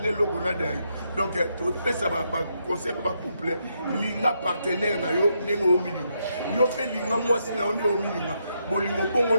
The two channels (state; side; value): inverted; both; correlation -0.79